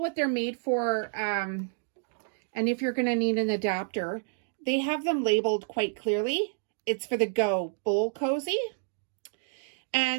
they're made for, and if you're going to need an adapter. They have them labeled quite clearly. It's for the Go Bowl Cozy.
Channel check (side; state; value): left; silent; digital silence